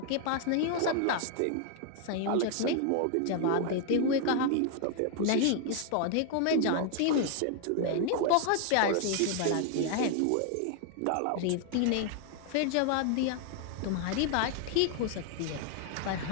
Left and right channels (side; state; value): both; different; correlation 0.00